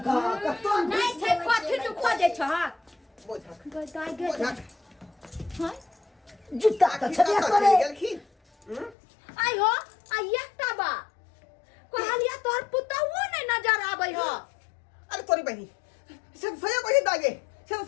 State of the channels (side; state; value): right; drops out; at 9.0 s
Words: कत्तो नहीं छै कथि तू खोजे छ बुझक गोताई बुझक हां जूता त छलिया करे गेलखिन आई हो आ एकटा बा कहलिया तोहर पुतौओ नहीं नजर आबै हो अरे तोरी बहनी सब सही कहि दागे सब